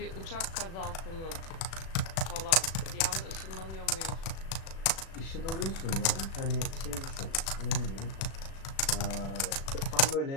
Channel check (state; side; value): late; right; 36 ms